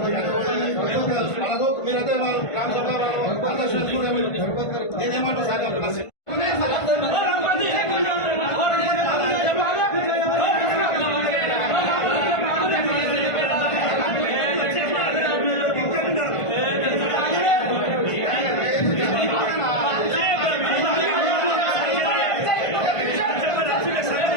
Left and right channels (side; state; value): right; late; 1.5 ms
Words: మీరైతే నేనేమంటారు సార్